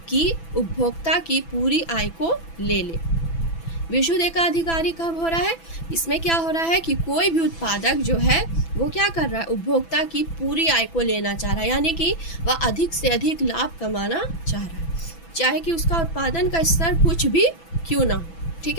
कि उपभोक्ता की पूरी आय को ले ले। विशुद्ध एकाधिकारी कब हो रहा है, इसमें क्या हो रहा है कि कोई भी उत्पादक जो है वो क्या कर रहा है, उपभोक्ता की पूरी आय को लेना चाह रहा है, यानी कि वह अधिक से अधिक लाभ कमाना चाह रहा है, चाहे कि उसका उत्पादन का स्तर कुछ भी क्यों ना हो। ठीक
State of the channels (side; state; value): right; late; 6.0 ms